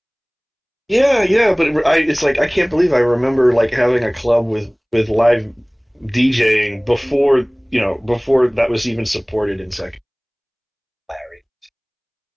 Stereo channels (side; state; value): both; identical; correlation 1.00